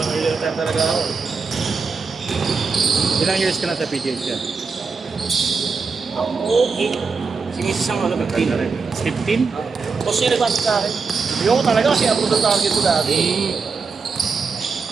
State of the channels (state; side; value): quieter; left; 4.9 dB